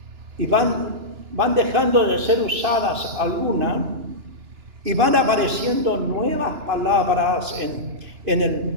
y van dejando de ser usadas algunas y van apareciendo nuevas palabras en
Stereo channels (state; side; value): late; left; 2.9 ms